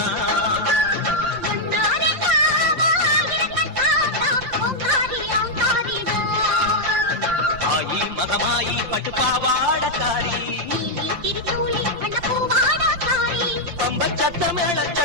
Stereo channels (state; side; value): late; left; 5.7 ms